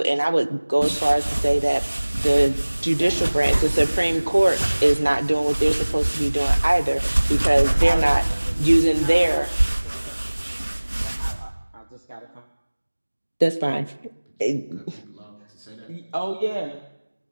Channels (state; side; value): inverted; both; correlation -1.00